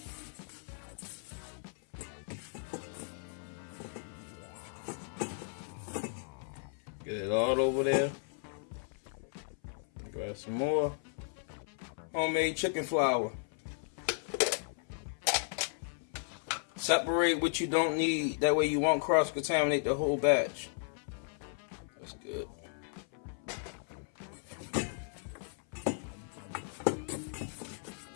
Get it all over there. Grab some more homemade chicken flour. Separate what you don't need. That way you won't cross-contaminate the whole batch. That's good.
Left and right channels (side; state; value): right; silent; 54 dB below the other